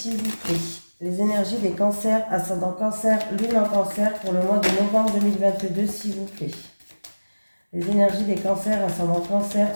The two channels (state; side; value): inverted; both; correlation -1.00